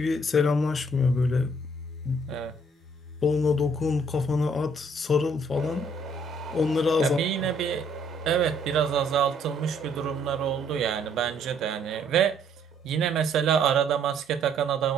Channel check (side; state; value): both; normal; correlation 0.64